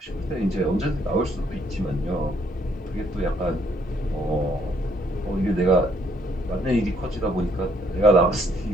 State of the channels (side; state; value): both; normal; correlation 0.68